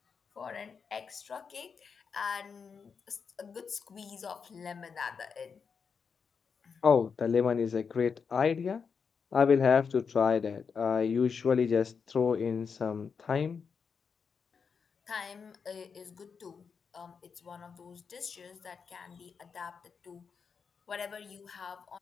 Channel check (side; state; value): right; quieter; 5.9 dB